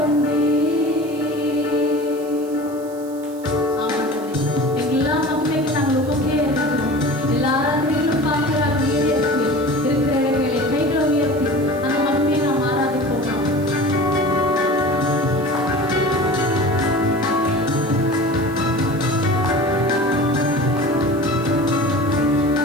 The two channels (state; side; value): noise; right; hiss, 22 dB below the sound